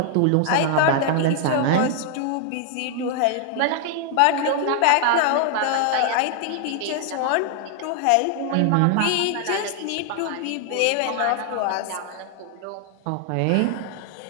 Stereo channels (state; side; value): different; both; correlation 0.00